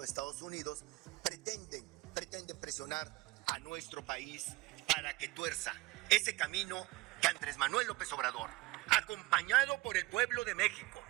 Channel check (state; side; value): quieter; left; 21.4 dB